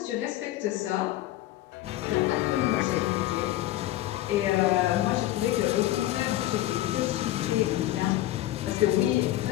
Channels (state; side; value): quieter; right; 14.9 dB